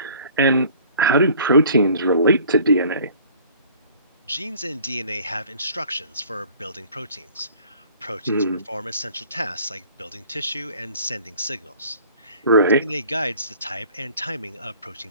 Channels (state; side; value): inverted; both; correlation -0.51